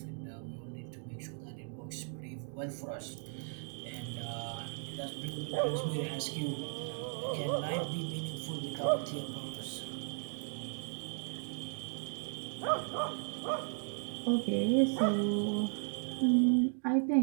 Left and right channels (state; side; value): silent; left; 54 dB below the other